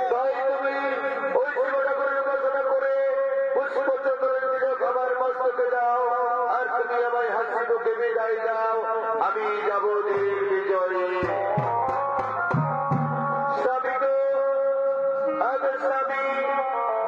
তাই তুমি ওই শিবটা করে উপাসনা করে পুষ্পচন্দ্রের তিলক আমার মস্তকে দাও আর তুমি আমায় হাসি মুখে বিদায় দাও। আমি যাব ঠিক বিজয়ে। স্বামী গো, আগের স্বামী,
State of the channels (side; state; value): both; identical; correlation 1.00